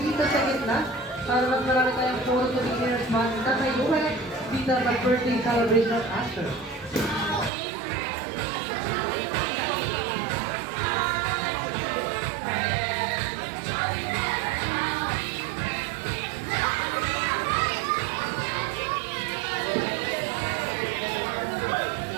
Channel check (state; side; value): drops out; left; at 7.5 s